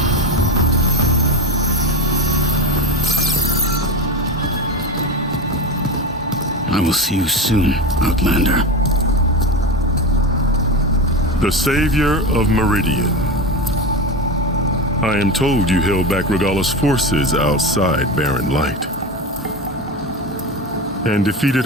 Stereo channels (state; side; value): normal; both; correlation 0.22